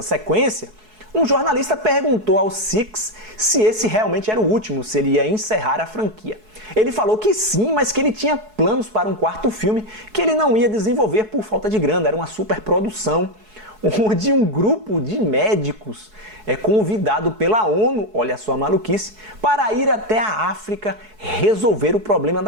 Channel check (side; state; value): left; late; 4.7 ms